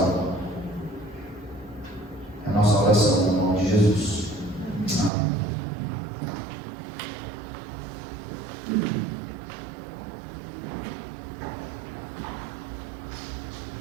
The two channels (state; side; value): drops out; left; at 5.1 s